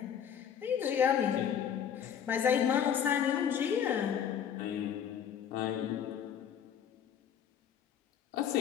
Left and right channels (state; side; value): quieter; right; 8.6 dB